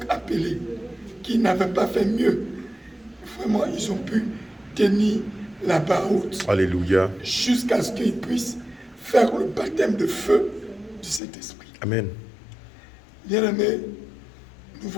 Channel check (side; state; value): right; drops out; at 11.2 s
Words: appelés qui n'avaient pas fait mieux, vraiment ils ont pu tenir la barre haute. Alléluia. Jusqu'à ce qu'ils puissent faire le baptême de feu du Saint-Esprit. Amen. Bien-aimés, nous